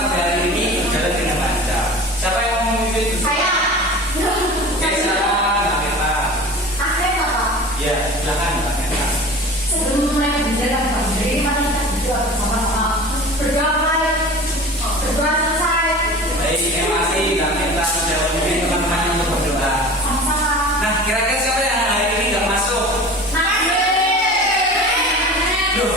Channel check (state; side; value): normal; both; correlation 0.38